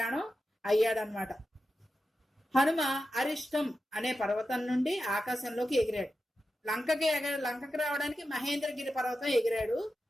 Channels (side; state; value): both; normal; correlation 0.91